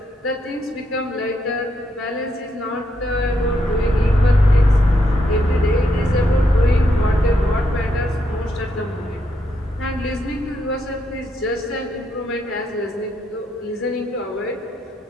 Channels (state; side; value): normal; both; correlation 0.79